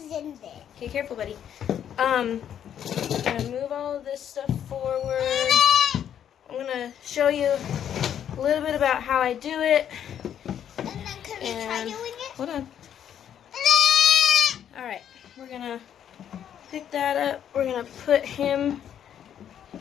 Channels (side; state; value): right; quieter; 9.5 dB